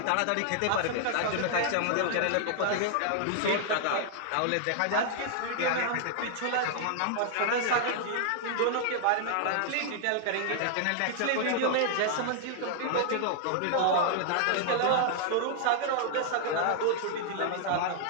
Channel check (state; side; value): different; both; correlation -0.01